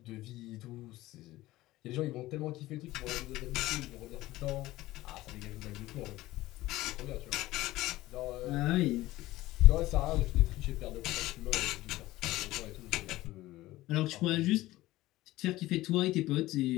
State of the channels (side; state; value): right; quieter; 17.2 dB